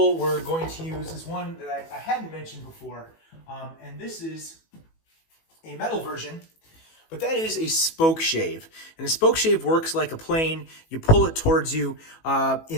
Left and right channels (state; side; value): late; right; 18 ms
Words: we're going to use is one that I hadn't mentioned before, and this is a metal version, but that is a spoke shave. And a spoke shave works like a plane. You pull it towards you.